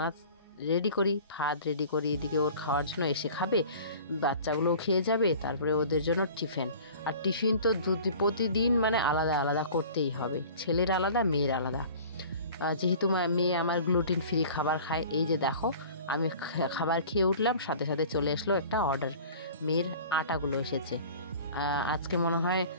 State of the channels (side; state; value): both; inverted; correlation -0.43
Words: রেডি করি, ভাত রেডি করি, এদিকে ওর খাওয়ার জন্য এসে খাবে, বাচ্চাগুলোও খেয়ে যাবে, তারপরে ওদের জন্য টিফিন। আর টিফিন তো প্রতিদিন মানে আলাদা আলাদা করতেই হবে, ছেলের আলাদা মেয়ের আলাদা। যেহেতু মেয়ে আমার গ্লুটেন ফ্রি খাবার খায়, এই যে দেখো আমি খাবার খেয়ে উঠলাম, সাথে সাথে চলে আসলো একটা অর্ডার। মেয়ের আটাগুলো এসেছে, আজকে মনে হয়